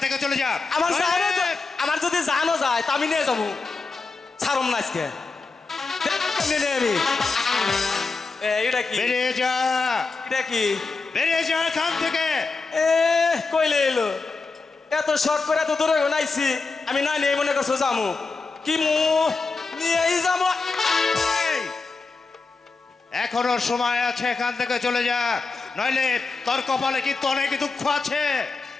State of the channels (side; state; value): right; quieter; 4.1 dB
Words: থেকে চলে যা। আমার যদি জানো যায় তা আমি নিয়ে যাবো, ছাড়ম না আজকে। কেমনে নেই আমি? এটা কি বেরিয়ে যা, এটা কি বেরিয়ে যা এখান থেকে। এ কইলে এলো এত শখ করে এত দূরে নাইছি, আমি না নিয়ে মনে করছো যাবো কি মু নিয়েই যাবো। এই, এখনো সময় আছে, এখান থেকে চলে যা, নইলে তোর কপালে কিন্তু অনেক দুঃখ আছে।